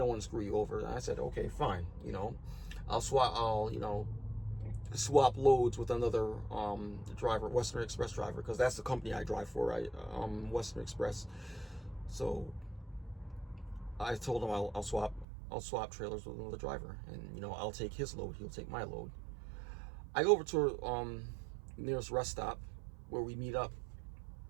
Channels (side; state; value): left; drops out; at 15.2 s